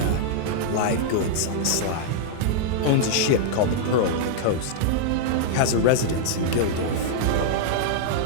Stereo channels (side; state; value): both; different; correlation -0.01